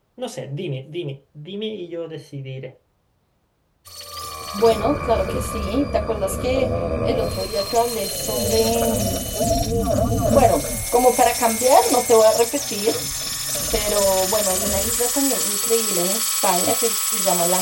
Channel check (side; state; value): both; identical; correlation 1.00